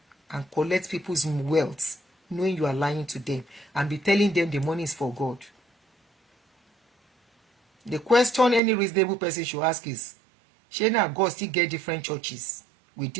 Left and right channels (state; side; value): drops out; left; at 8.6 s